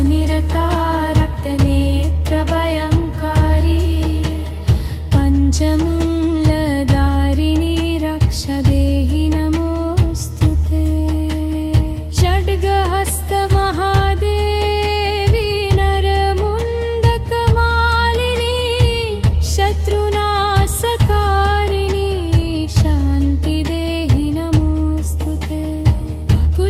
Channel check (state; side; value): identical; both; correlation 1.00